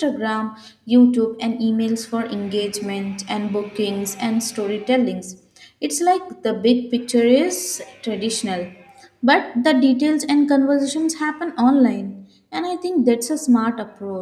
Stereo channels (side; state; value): both; identical; correlation 1.00